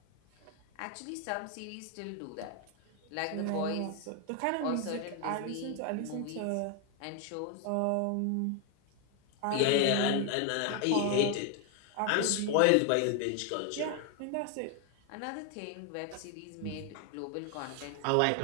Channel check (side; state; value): both; different; correlation 0.01